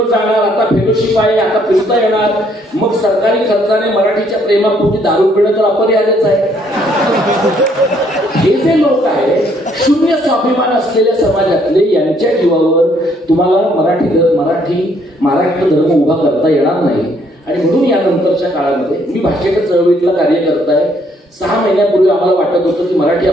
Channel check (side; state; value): both; normal; correlation 0.67